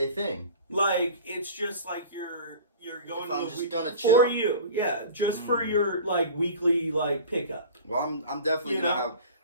thing? Like, it's just like you're going to the week gonna chill? for you. Yeah, just for your like weekly like pickup. Well, I'm definitely gonna have.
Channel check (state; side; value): inverted; both; correlation -0.39